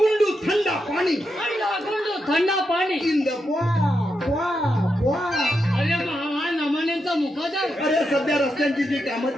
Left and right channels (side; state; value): both; normal; correlation 0.85